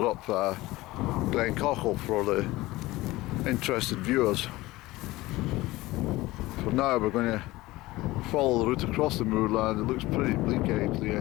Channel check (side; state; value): right; quieter; 19.0 dB